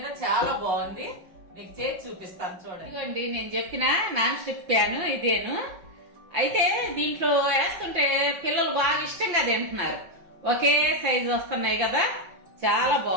చాలా బాగుంది, మీకు చేసి చూపిస్తాను చూడండి. ఇదిగోండి నేను చెప్పిన నాన్ స్టిక్ ప్యాన్ ఇదేను. అయితే దీంట్లో వేస్తుంటే పిల్లలు బాగా ఇష్టంగా తింటున్నారు. ఒకే సైజు వస్తున్నాయి కదా, చాలా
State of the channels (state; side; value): late; left; 5.9 ms